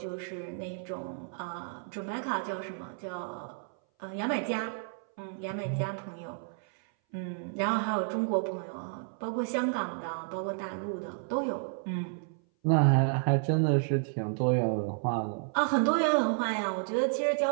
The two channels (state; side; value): silent; left; 57 dB below the other